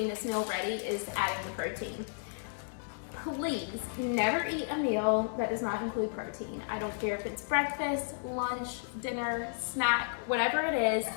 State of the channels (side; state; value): right; silent; digital silence